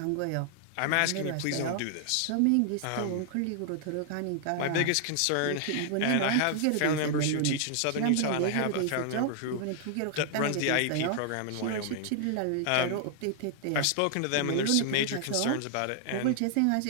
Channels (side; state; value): both; different; correlation 0.00